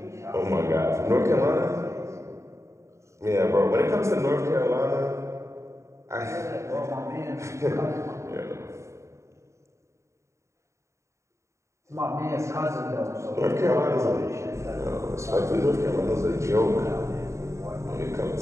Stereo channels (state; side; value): late; left; 0.14 ms